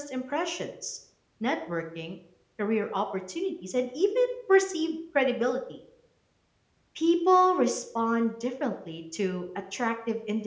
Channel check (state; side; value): identical; both; correlation 1.00